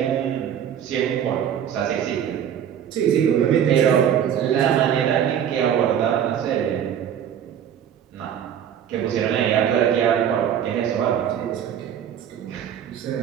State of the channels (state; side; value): quieter; left; 9.3 dB